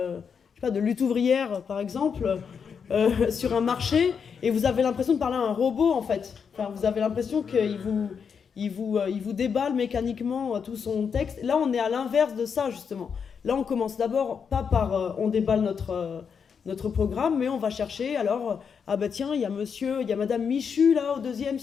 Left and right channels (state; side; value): quieter; right; 6.5 dB